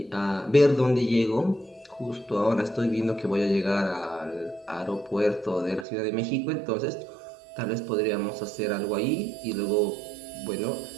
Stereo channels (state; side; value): drops out; left; at 5.9 s